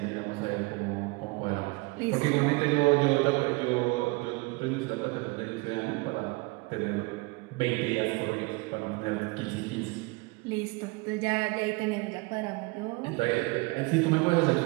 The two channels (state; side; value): quieter; left; 26.3 dB